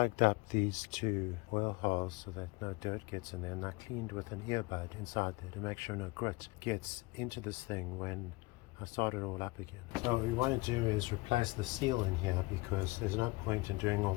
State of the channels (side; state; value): right; quieter; 23.6 dB